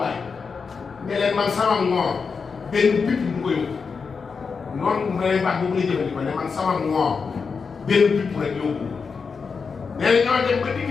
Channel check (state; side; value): quieter; right; 5.3 dB